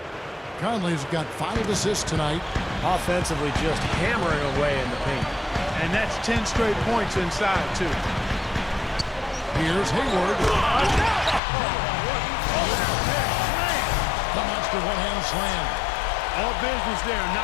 Conley's got 5 assists tonight. Offensively just hammering away in the paint. And that's 10 straight points inside, too. Here's Hayward. The monster one-hand slam. All business there,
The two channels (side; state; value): right; drops out; at 11.4 s